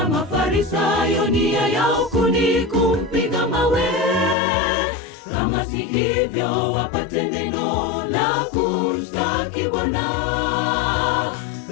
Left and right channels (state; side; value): drops out; right; at 4.4 s